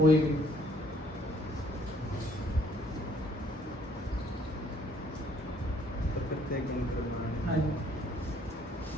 भी? हाँ जी,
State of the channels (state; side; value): normal; both; correlation 0.62